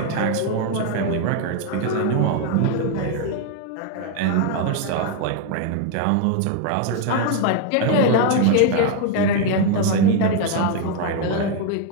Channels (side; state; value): both; different; correlation 0.01